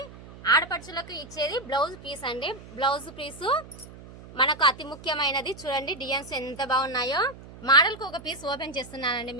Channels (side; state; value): right; noise; hum, 17 dB below the sound